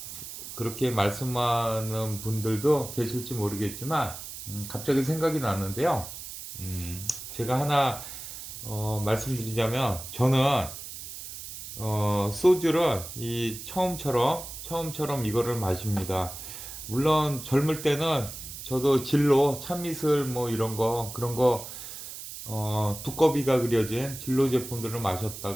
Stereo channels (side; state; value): right; noise; hiss, 11 dB below the sound